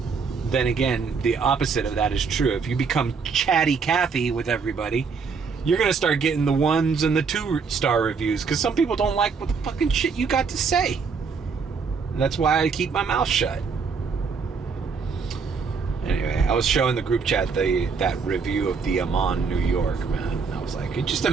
then again, the opposite of that is true. If you become chatty Cathy with everybody, you're going to start getting the 1s and the 2-star reviews, because some people don't like what the fucking shit you got to say. And that's why I keep my mouth shut. Anyway, I was showing the group chat that review of the Amman, New York, man. I was like, just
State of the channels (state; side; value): quieter; left; 5.4 dB